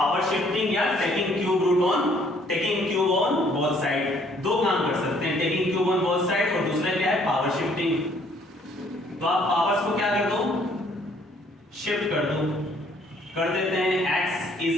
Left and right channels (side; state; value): both; normal; correlation 0.63